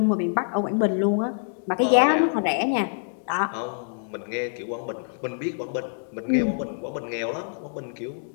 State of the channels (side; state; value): right; silent; digital silence